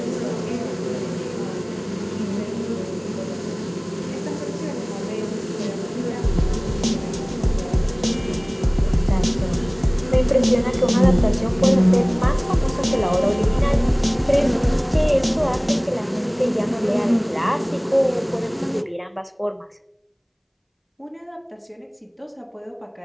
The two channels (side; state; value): both; identical; correlation 1.00